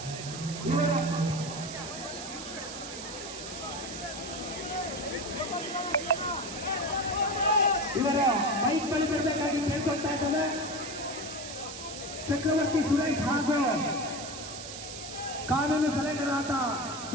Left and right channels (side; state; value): right; noise; hiss, 9 dB below the sound